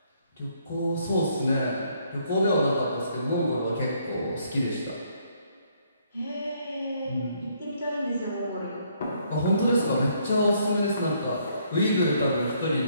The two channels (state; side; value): inverted; both; correlation -0.69